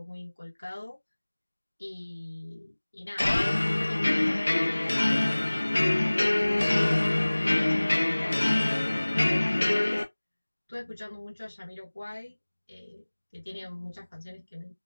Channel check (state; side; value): inverted; both; correlation -1.00